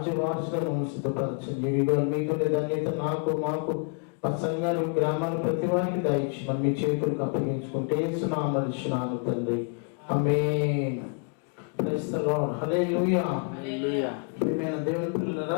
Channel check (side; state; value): right; quieter; 38.5 dB